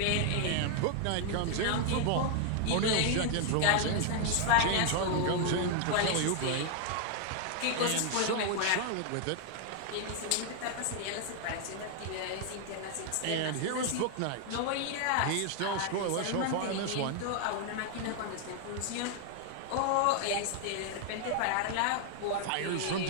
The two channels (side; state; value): both; different; correlation 0.00